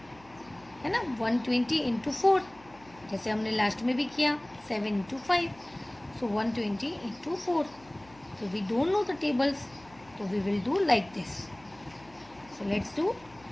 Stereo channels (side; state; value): left; noise; hum, 26 dB below the sound